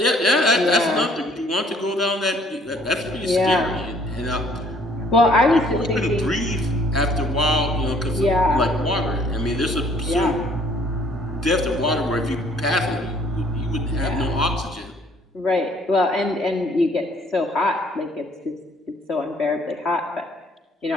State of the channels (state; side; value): normal; both; correlation 0.60